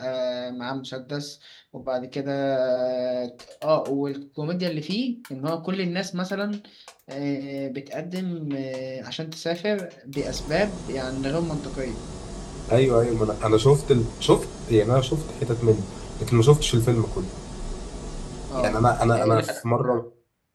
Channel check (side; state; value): both; identical; correlation 1.00